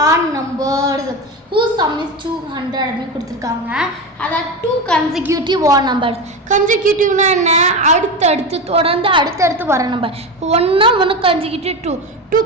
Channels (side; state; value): both; normal; correlation 0.21